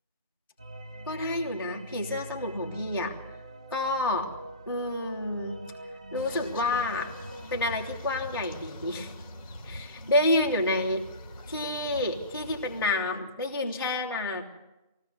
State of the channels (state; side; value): inverted; both; correlation -0.32